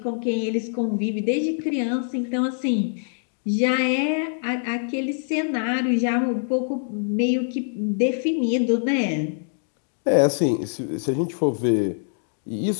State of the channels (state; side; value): silent; right; digital silence